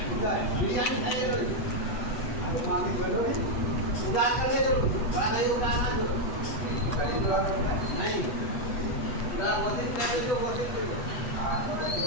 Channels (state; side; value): late; right; 8.1 ms